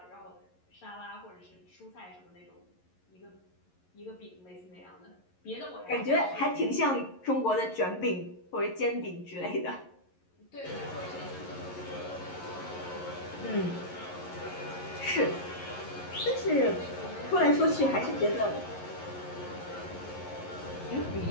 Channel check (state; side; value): late; right; 11 ms